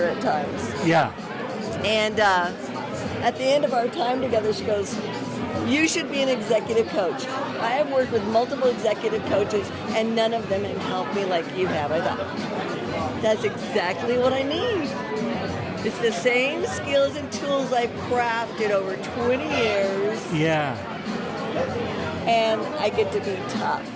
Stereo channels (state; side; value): identical; both; correlation 1.00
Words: at times. Yeah. And at the end of our time together, she goes, you should be an executive coach. I have worked with multiple executive coaches, and none of them have helped me like you have. I thought, that's exactly what I need. It's the same skills and tools I've crafted over 20 years, Yeah. and I get to be tough.